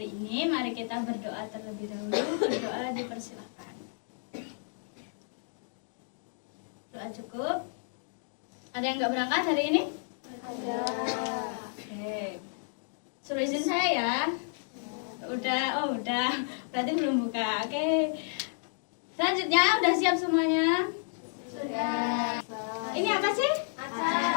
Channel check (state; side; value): silent; right; digital silence